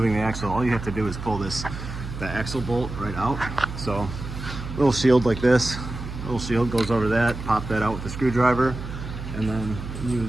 the axle, all you have to do is pull the axle bolt right out. So little shield like this, little shield goes over that, pop that out with the screwdriver, and then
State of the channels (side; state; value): right; noise; hum, 8 dB below the sound